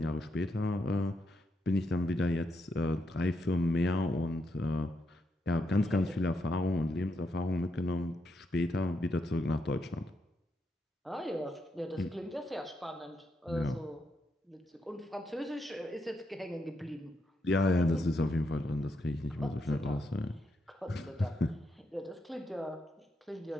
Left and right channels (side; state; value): both; normal; correlation 0.81